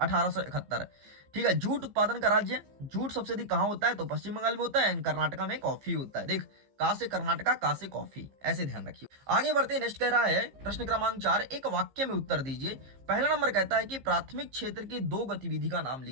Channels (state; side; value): late; left; 15 ms